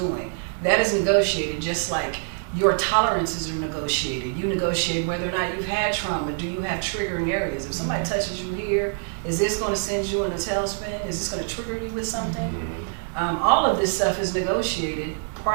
That is negotiated, just like your tolerances are negotiated. You negotiate whether or not you've had trauma. Do you have triggering areas? If somebody touches you here, is this going to send you in a tailspin? Is this going to trigger you with something? All of this stuff is negotiated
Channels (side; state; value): left; silent; 60 dB below the other